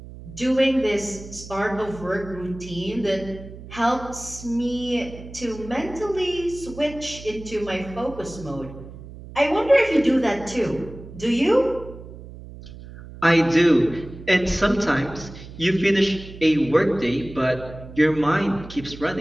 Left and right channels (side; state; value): right; noise; hum, 15 dB below the sound